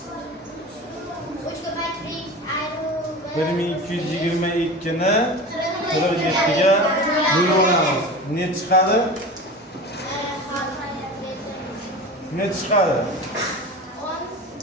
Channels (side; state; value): both; normal; correlation 0.32